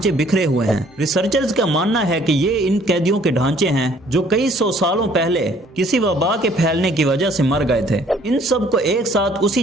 بکھرے ہوئے ہیں۔ ریسرچرز کا ماننا ہے کہ یہ ان قیدیوں کے ڈھانچے ہیں جو کئی سو سالوں پہلے کسی وبا کے پھیلنے کی وجہ سے مر گئے تھے۔ ان سب کو ایک ساتھ اسی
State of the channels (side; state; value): both; normal; correlation 0.59